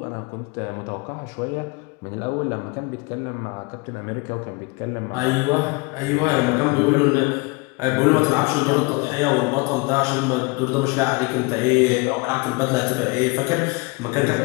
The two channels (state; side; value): quieter; right; 27.6 dB